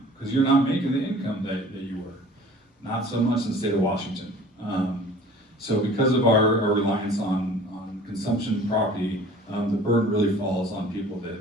because you're not making the income that you were. Not so much in the state of Washington. So because of our reliance on consumption property, the burden really falls on people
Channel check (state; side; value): normal; both; correlation 0.47